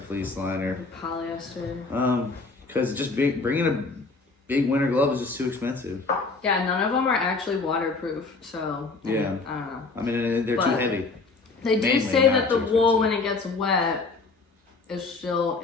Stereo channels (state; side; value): quieter; right; 4.0 dB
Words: fleece liner. Or polyester. Because just bringing a big winter glove is just too expensive. Yeah, none of them are actually waterproof, so. Yeah. I don't know. I mean, they're too heavy. They do say that the wool, when it gets wet, is still